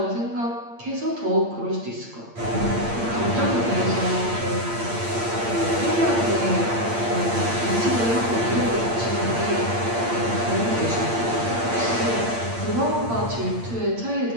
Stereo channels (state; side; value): late; left; 8.7 ms